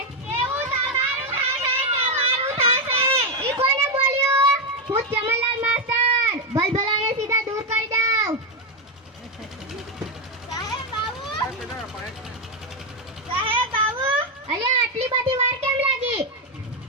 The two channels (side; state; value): both; normal; correlation 0.05